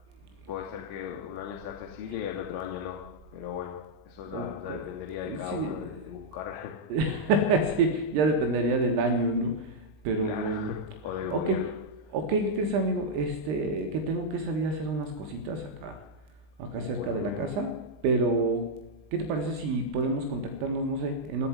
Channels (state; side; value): late; left; 20 ms